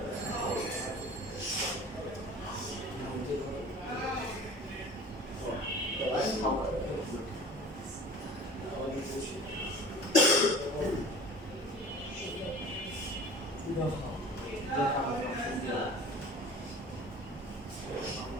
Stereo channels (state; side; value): normal; both; correlation 0.41